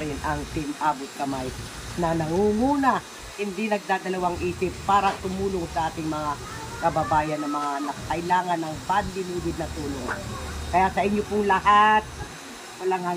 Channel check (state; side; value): identical; both; correlation 1.00